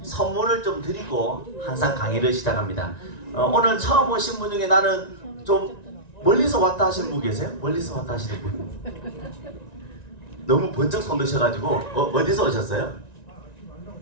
선물을 좀 드리고 항상 강의를 시작합니다. 오늘 처음 오신 분 중에 나는 좀 멀리서 왔다 하시는 분 계세요? 멀리서 왔다 하시는 분? 너무 번쩍 손 드셔가지고 어디서 오셨어요?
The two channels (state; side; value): late; right; 1.9 ms